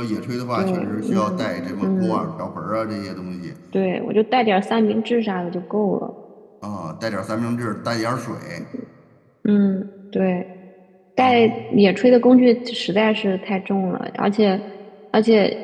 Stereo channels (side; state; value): both; identical; correlation 1.00